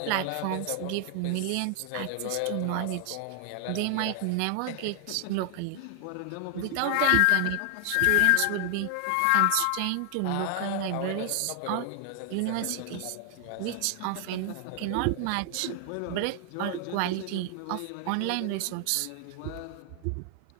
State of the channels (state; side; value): different; both; correlation 0.00